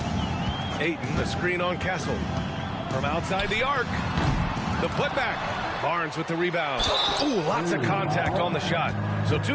Ayton, the screen on Castle. From outside the arc. The putback. Barnes with the rebound. Ooh, lots of contact on the shot. So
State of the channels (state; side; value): identical; both; correlation 1.00